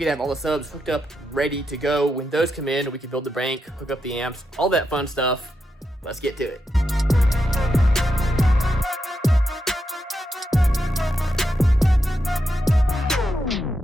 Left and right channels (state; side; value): normal; both; correlation 0.85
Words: could have all the subs hooked up, ready to go, when those come in, we can build the bank, hook up the amps, all that fun stuff. Let's get to it.